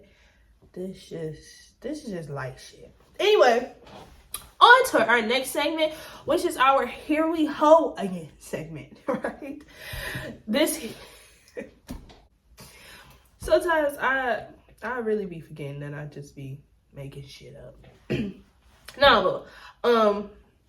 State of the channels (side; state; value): both; identical; correlation 1.00